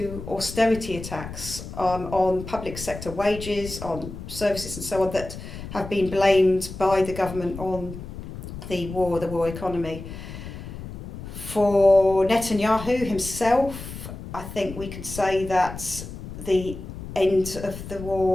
austerity attacks on public sector wages, on services and so on, that have been blamed by the government on the war economy. For Netanyahu himself, I think we could say that the end of the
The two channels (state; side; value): noise; left; rumble, 10 dB below the sound